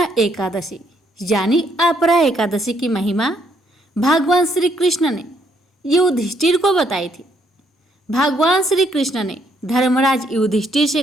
एकादशी यानी अपरा एकादशी की महिमा भगवान श्री कृष्ण ने युधिष्ठिर को बताई थी। भगवान श्री कृष्ण ने धर्मराज युधिष्ठिर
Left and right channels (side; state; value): both; normal; correlation 0.71